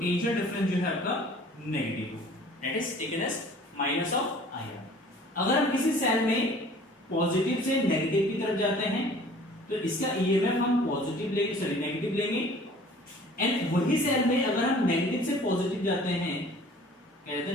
डिफरेंस जो है आपका नेगेटिव होगा, that is taken as minus of IR. अगर हम किसी सेल में पॉजिटिव से नेगेटिव की तरफ जाते हैं तो इसका EMF हम पॉजिटिव लेंगे, सॉरी नेगेटिव लेंगे, एंड वही सेल में अगर हम नेगेटिव से पॉजिटिव जाते हैं, कहते हैं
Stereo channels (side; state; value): both; normal; correlation 0.49